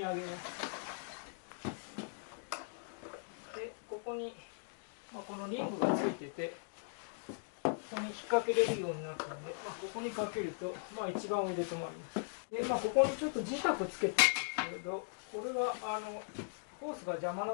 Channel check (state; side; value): silent; right; digital silence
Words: 上げます。で、ここに、このリングがついてて、ここに引っ掛けれるようになったので、ここにかけると、一番上で止まります。で、ここにちょっと磁石つけてるんですけど、これはホースが邪魔